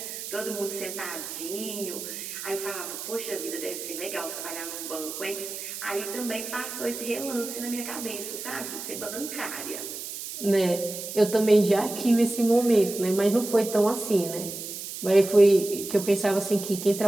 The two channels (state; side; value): noise; right; hiss, 8 dB below the sound